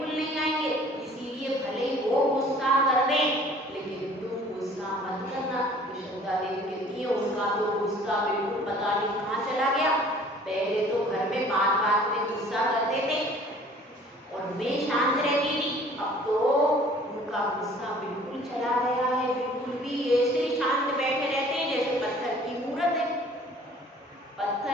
नहीं आएंगे। इसीलिए भले ही वो गुस्सा कर दे लेकिन तुम गुस्सा मत करना। श्रद्धा देवी कहती है उनका तो गुस्सा बिल्कुल पता नहीं कहाँ चला गया। पहले तो घर में बात बात में गुस्सा करते थे और मैं शांत रहती थी, अब तो उनका गुस्सा बिल्कुल चला गया है। बिल्कुल भी ऐसे शांत बैठे रहते हैं जैसे पत्थर की मूर्त है।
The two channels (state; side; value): normal; both; correlation 0.52